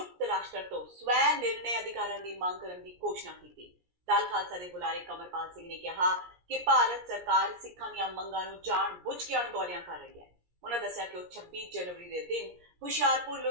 ਰਾਸ਼ਟਰ ਤੋਂ ਸਵੈ ਨਿਰਣੇ ਅਧਿਕਾਰਾਂ ਦੀ ਮੰਗ ਕਰਨ ਦੀ ਘੋਸ਼ਣਾ ਕੀਤੀ। ਦਲ ਖਾਲਸਾ ਦੇ ਬੁਲਾਰੇ ਕਮਲਪਾਲ ਸਿੰਘ ਨੇ ਕਿਹਾ ਕਿ ਭਾਰਤ ਸਰਕਾਰ ਸਿੱਖਾਂ ਦੀਆਂ ਮੰਗਾਂ ਨੂੰ ਜਾਣ ਬੁੱਝ ਕੇ ਅਣਗੌਲਿਆਂ ਕਰ ਰਹੀ ਹੈ। ਉਹਨਾਂ ਦੱਸਿਆ ਕਿ ਉਹ 26 ਜਨਵਰੀ ਦੇ ਦਿਨ ਹੁਸ਼ਿਆਰਪੁਰ,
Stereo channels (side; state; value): left; late; 17 ms